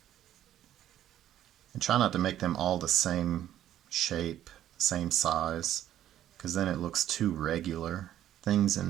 And try not to make them all the same shape, same size, because then it looks too regular. Things in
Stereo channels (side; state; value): left; quieter; 12.0 dB